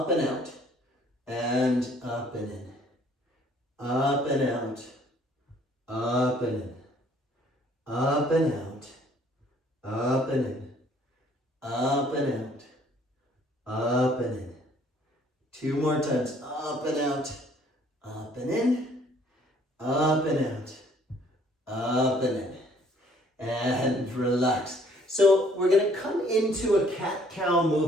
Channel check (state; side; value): normal; both; correlation 0.60